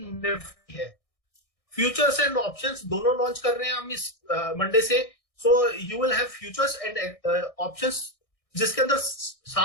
Nifty है. फ्यूचर्स एंड ऑप्शंस दोनों लॉन्च कर रहे हैं हम इस मंडे से. So you will have futures and options जिसके अंदर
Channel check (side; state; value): right; late; 1.6 ms